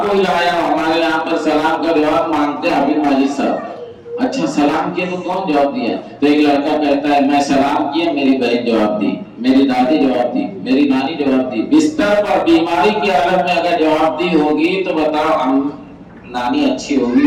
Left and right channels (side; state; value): both; identical; correlation 1.00